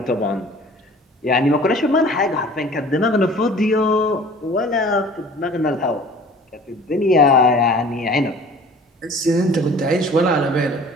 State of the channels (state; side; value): normal; both; correlation 0.47